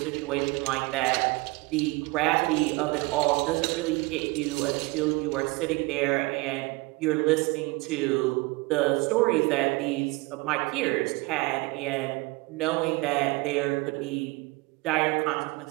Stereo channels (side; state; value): left; quieter; 23.8 dB